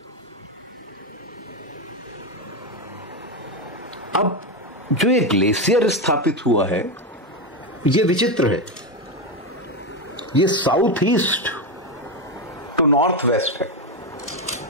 अब जो ये ग्लेशियर स्थापित हुआ है ये विचित्र है, ये south east to north west है,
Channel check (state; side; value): normal; both; correlation 0.11